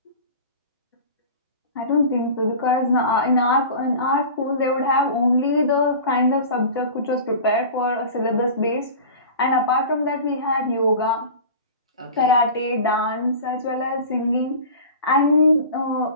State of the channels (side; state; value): both; inverted; correlation -0.36